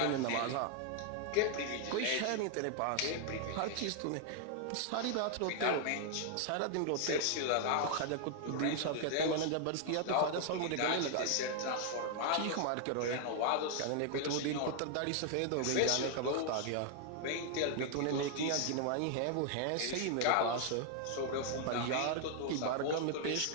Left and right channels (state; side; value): different; both; correlation 0.00